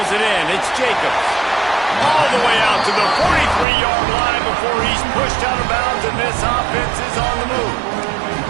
it in. It's Jacobs. All the way out to the 43-yard line before he's pushed out of bounds, and this offense is on the move.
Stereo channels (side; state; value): left; drops out; at 3.7 s